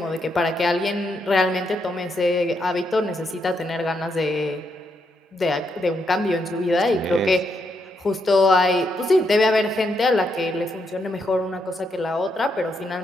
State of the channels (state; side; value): normal; both; correlation 0.79